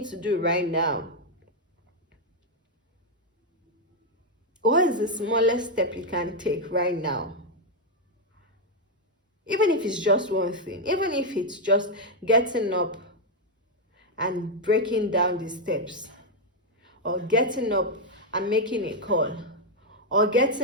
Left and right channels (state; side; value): normal; both; correlation 0.00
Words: to do right now? What is the smallest step you can take right now? Even if it's just one thing, even if it's just getting up and breaking down the steps, or getting up and making a call, or